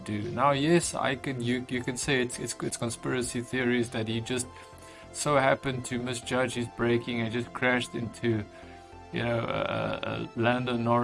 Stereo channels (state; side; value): identical; both; correlation 1.00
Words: Now, yes, you can say it's conspiracy theories that he just so happened to misjudge his braking and just crashed into Lando